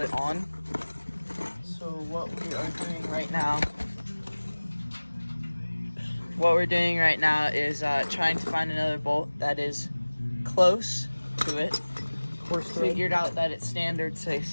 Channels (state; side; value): inverted; both; correlation -1.00